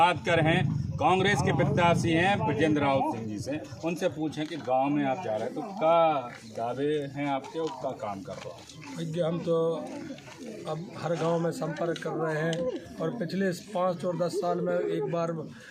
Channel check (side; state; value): both; identical; correlation 1.00